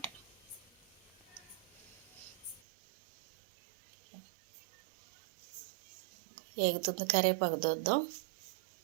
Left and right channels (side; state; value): left; drops out; at 2.6 s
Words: ఎగుతుంది కరివేపాకు దూద్దాం.